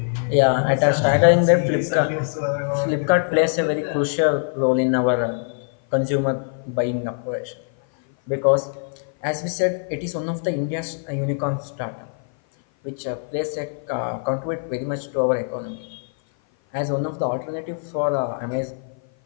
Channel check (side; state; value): right; silent; 56 dB below the other